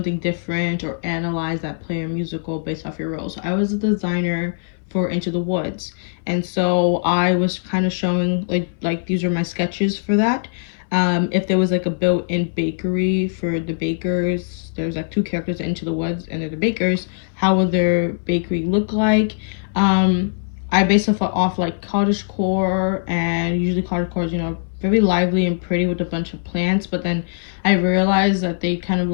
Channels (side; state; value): right; silent; 63 dB below the other